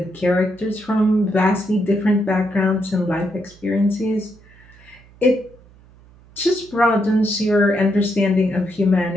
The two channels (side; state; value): right; noise; hum, 26 dB below the sound